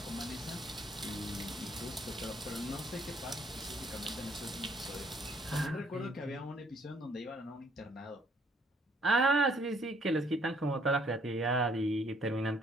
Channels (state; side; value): normal; both; correlation 0.65